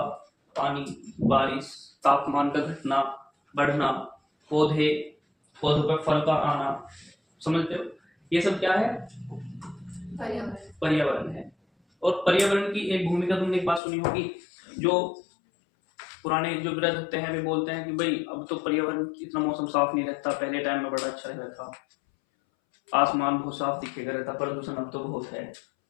पानी, बारिश, तापमान का घटना, बढ़ना, पौधे, पौधों पर फल का आना, समझते हो, ये सब क्या है? पर्यावरण है। और पर्यावरण की एक भूमिका तुमने एक बात सुनी होगी, जो पुराने जो वृद्ध होते हैं वे बोलते हैं कि भाई अब तो पर्यावरण इतना मौसम साफ नहीं रहता, पहले टाइम में बड़ा अच्छा रहता था, आसमान बहुत साफ दिखेगा रहता, प्रदूषण अब तो बहुत है,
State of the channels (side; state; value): right; drops out; at 13.8 s